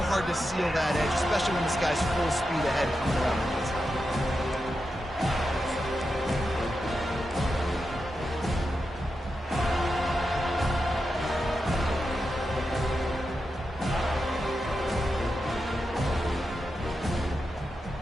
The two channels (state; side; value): normal; both; correlation 0.88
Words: hard to seal that edge, especially when this guy's full speed ahead coming around the inside.